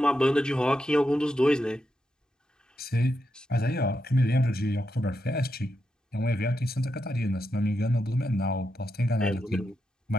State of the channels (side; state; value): both; normal; correlation 0.85